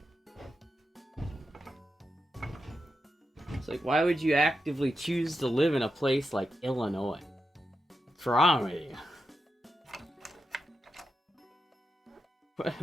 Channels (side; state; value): both; normal; correlation 0.88